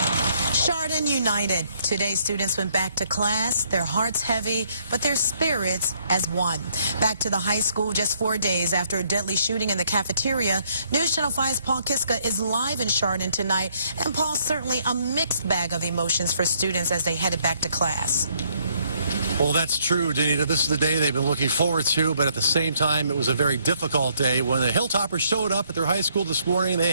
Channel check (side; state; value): both; inverted; correlation -0.69